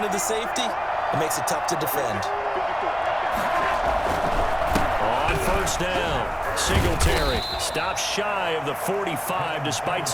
of the safety, it makes it tough to defend. On first down, Singletary stops shy of the 45 despite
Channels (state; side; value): identical; both; correlation 1.00